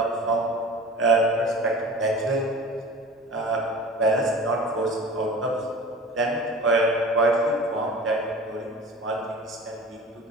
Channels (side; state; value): both; normal; correlation 0.38